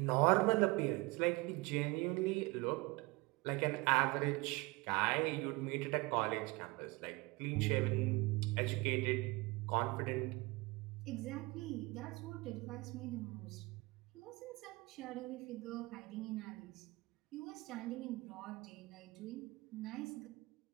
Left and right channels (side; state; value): left; quieter; 23.9 dB